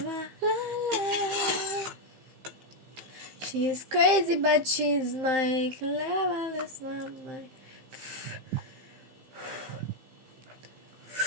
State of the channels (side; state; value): left; late; 15 ms